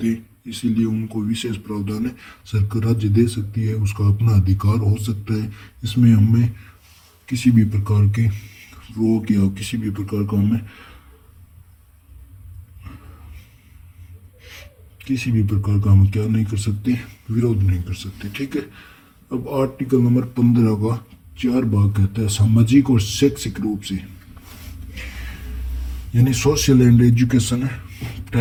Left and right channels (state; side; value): identical; both; correlation 1.00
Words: हैं, इसीलिए उनको विशेष प्रावधान है। सरकार राज्य दे सकती है, उसका अपना अधिकार हो सकता है। इसमें हमें किसी भी प्रकार के रोक या किसी भी प्रकार का हमें किसी भी प्रकार का हम क्या नहीं कर सकते, विरोध नहीं कर सकते। ठीक है। अब आर्टिकल नंबर 15 का 4 भाग कहता है सामाजिक और शैक्षिक रूप से, यानी सोशल एंड एजुकेशन